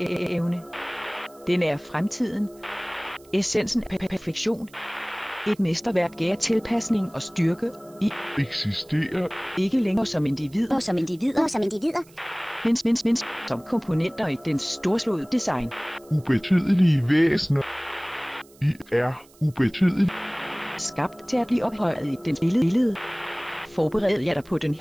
Den er fremtiden, essensen af perfektion, et mesterværk af tilpasning og styrke. I eksisterer ikke længere som individer, men som komponenter i den storslåede design. ubetydelige væsener. I er ubetydelige. Skabt til at blive ophøjet i dens billede. Forbered jer dig på den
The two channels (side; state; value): right; noise; hiss, 27 dB below the sound